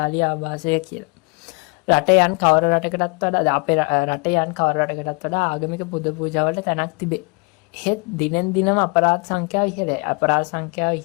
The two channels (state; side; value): quieter; right; 30.6 dB